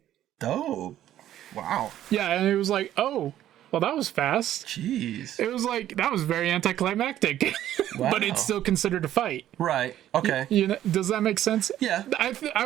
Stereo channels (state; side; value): quieter; left; 12.2 dB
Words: Dope. Wow. Yeah, and it was like, oh, well, that was fast. Jeez. It was like that was very anticlimactic, but it's still considered a fight. Right. Okay. You know, does that make sense? Yeah.